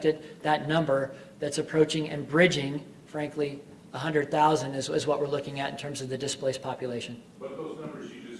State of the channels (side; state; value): both; identical; correlation 1.00